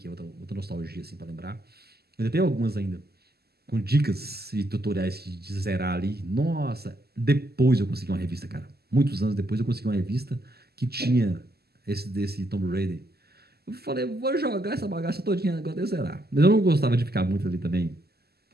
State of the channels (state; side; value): late; left; 0.46 ms